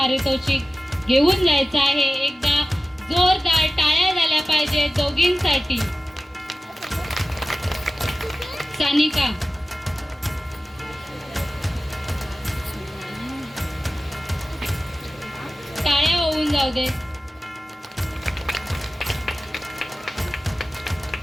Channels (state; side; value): normal; both; correlation 0.96